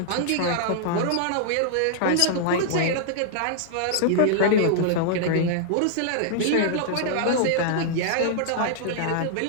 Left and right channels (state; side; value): different; both; correlation -0.01